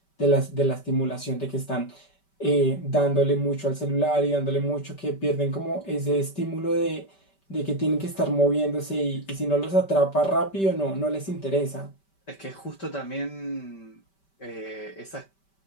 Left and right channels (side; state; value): right; late; 5.2 ms